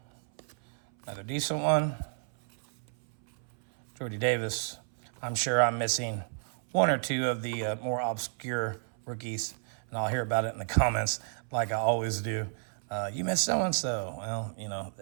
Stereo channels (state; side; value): silent; left; 57 dB below the other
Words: Another decent one. Jordy Davis. I'm sure I'm missing one or two of the more obscure rookies, and I'll hear about it in the comments like I always do. You missed so-and-so. Well, you know,